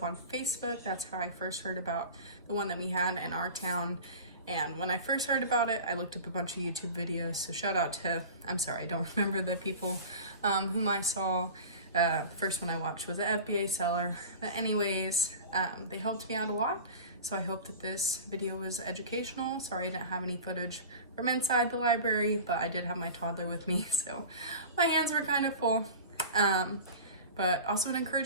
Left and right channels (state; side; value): inverted; both; correlation -0.35